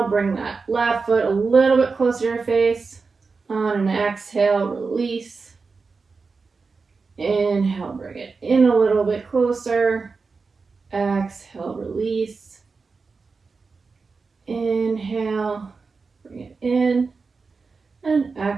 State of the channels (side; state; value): left; quieter; 4.5 dB